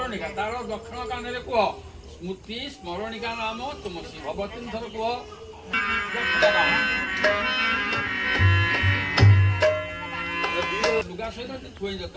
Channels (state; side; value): identical; both; correlation 1.00